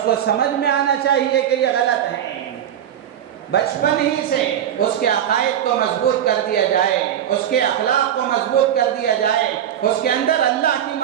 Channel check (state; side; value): quieter; left; 10.2 dB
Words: کو سمجھ میں آنا چاہیے کہ یہ غلط ہیں۔ بچپن ہی سے اس کے عقائد کو مضبوط کر دیا جائے، اس کے اخلاق کو مضبوط کر دیا جائے، اس کے اندر اللہ کی